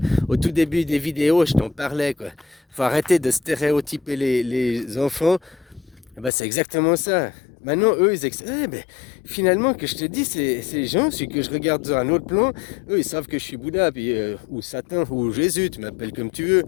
au tout début des vidéos, je t'en parlais, quoi. Faut arrêter de stéréotyper les enfants. Eh ben, c'est exactement ça. Maintenant, eux, ben, finalement, que je te dis, ces gens, c'est que je regarde dans un autre plan, eux, ils savent que je suis Bouddha, puis, ou Satan, ou Jésus, tu m'appelles comme tu veux.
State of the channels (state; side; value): drops out; right; at 6.3 s